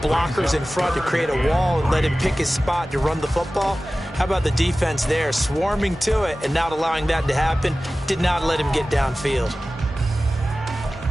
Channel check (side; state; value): both; normal; correlation 0.96